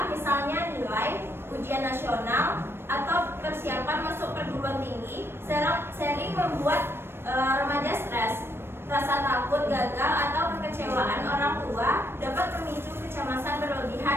misalnya nilai, ujian nasional, atau persiapan masuk perguruan tinggi, sering membuat remaja stres. Rasa takut gagal atau kekecewaan orang tua dapat memicu kecemasan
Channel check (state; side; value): late; left; 0.12 ms